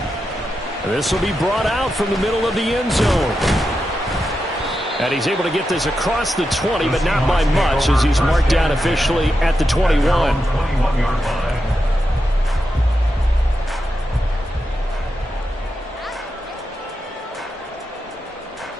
This will be brought out from the middle of the end zone. And he's able to get this across the 20, but not by much as he's marked down officially at the 21.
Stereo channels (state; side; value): normal; both; correlation 0.88